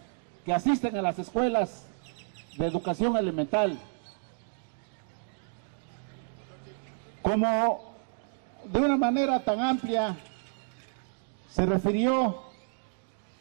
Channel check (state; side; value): silent; left; digital silence